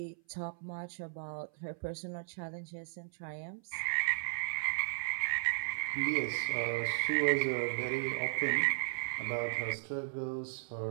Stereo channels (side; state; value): left; silent; 54 dB below the other